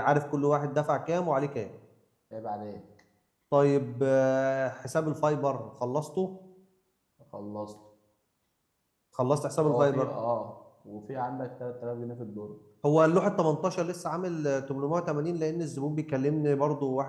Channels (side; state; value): both; identical; correlation 1.00